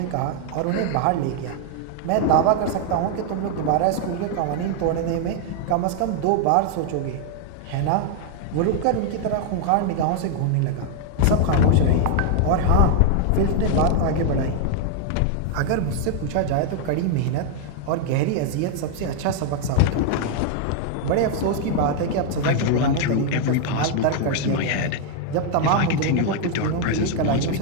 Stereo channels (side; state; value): both; different; correlation 0.00